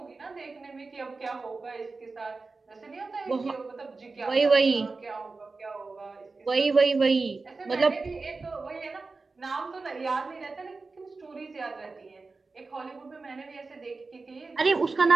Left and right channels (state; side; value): quieter; left; 3.9 dB